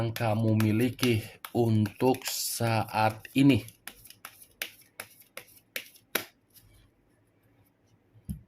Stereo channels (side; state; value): both; identical; correlation 1.00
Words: kamu miliki untuk saat ini.